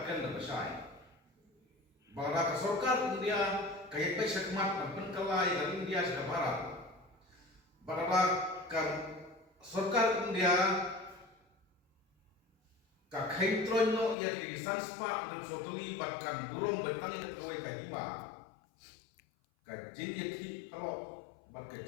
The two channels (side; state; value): right; drops out; at 14.2 s